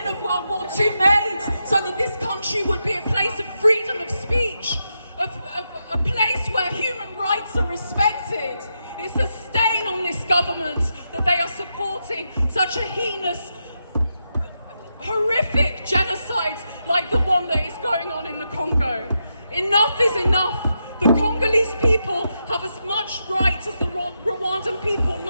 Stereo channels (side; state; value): both; inverted; correlation -0.85